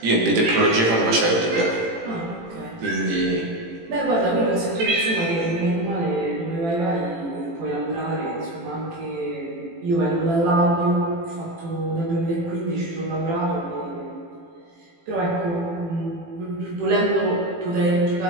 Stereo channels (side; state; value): left; late; 18 ms